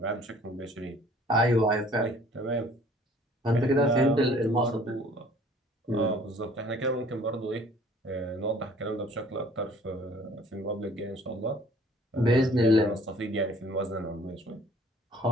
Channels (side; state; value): both; normal; correlation 0.54